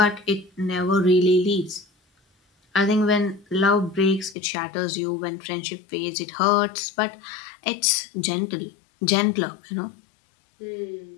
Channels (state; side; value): drops out; right; at 4.4 s